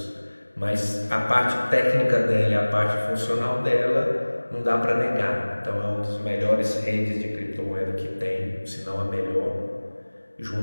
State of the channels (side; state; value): both; inverted; correlation -1.00